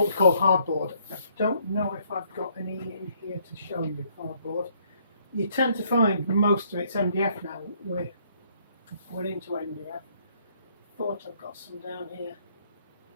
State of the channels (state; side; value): inverted; both; correlation -0.67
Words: we call hardboard. I don't know if I've got any in here to show you hardboard. You tend to find most of it's MDF now. We're into MDF. Thought I've got some down here.